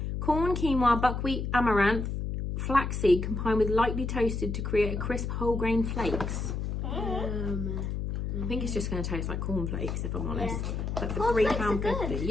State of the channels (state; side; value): noise; left; hum, 3 dB below the sound